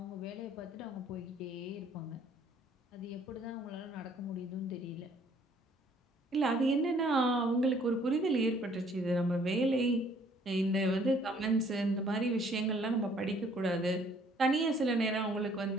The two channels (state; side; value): normal; both; correlation 0.60